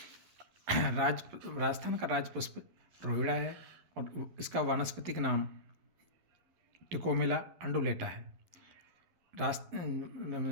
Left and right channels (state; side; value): late; left; 11 ms